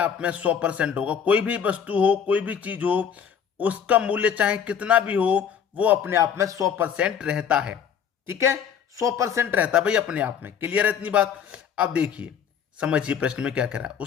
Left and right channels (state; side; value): quieter; right; 7.7 dB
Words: में 100% होगा। कोई भी वस्तु हो, कोई भी चीज हो, उसका मूल्य चाहे कितना भी हो, वो अपने आप में 100% रहता है। ठीक है, 100% रहता है भाई अपने आप में। क्लियर है इतनी बात। अब देखिए, समझिए प्रश्न में क्या कह रहा है।